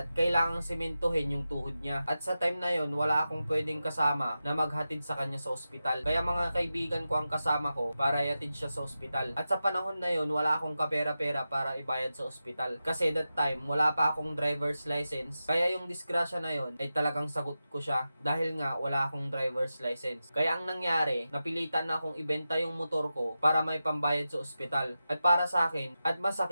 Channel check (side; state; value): both; inverted; correlation -0.92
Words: kailangang simentohin yung tuhod niya. At sa time na yon wala akong pwedeng kasama na maghatid sa kanya sa ospital. Kaya mga kaibigan ko ang kasama ko para ihatid siya sa ospital. At sa panahon na yon wala akong kapera-pera para ibayad sa ospital. Kasi that time wala pa akong driver's license. Kaya yung disgrasya na yon ay talagang sagot ko siya dahil nga wala akong driver's license. Kaya ang nangyari, napilitan na akong ibenta yung motor ko para may pambayad sa ospital. At para sa akin, at